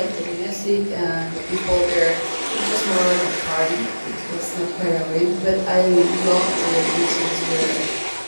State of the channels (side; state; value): both; inverted; correlation -1.00